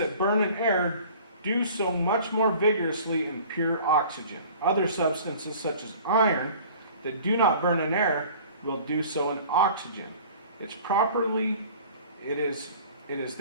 burn in air do so much more vigorously in pure oxygen. Other substances, such as iron, that do not burn in air, will do so in oxygen. It is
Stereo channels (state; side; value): inverted; both; correlation -0.47